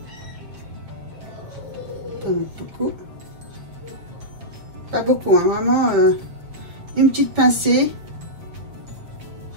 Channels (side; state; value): left; late; 7.6 ms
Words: Beaucoup. Pas beaucoup, hein, vraiment une petite pincée.